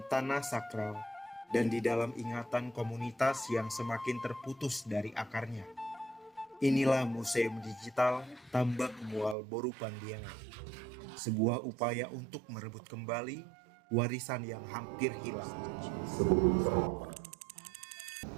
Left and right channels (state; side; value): drops out; left; at 9.3 s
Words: tanah sakral, dan di dalam ingatan komunitas yang semakin terputus dari akarnya. Inilah Museum Digital Tambak Mual Boru Pandiangan, sebuah upaya untuk merebut kembali warisan yang hampir hilang.